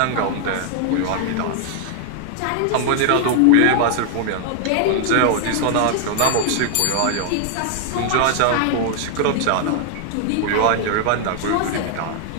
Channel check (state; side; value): different; both; correlation 0.00